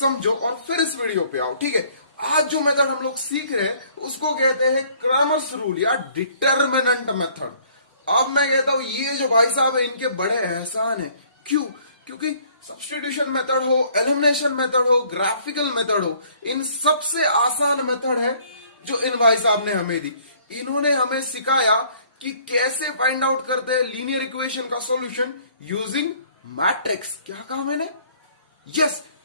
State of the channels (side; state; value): both; inverted; correlation -0.59